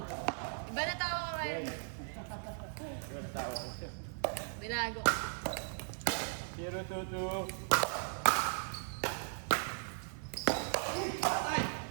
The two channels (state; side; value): silent; left; 53 dB below the other